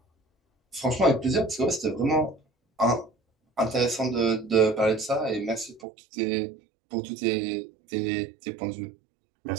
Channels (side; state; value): left; drops out; at 5.8 s